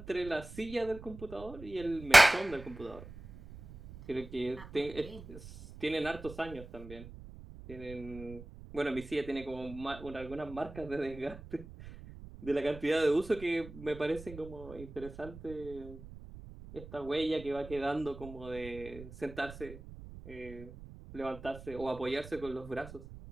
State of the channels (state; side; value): noise; right; rumble, 15 dB below the sound